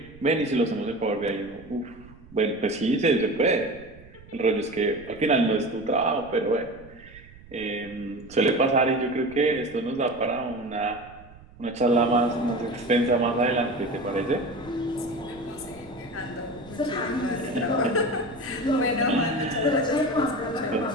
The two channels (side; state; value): right; noise; rumble, 22 dB below the sound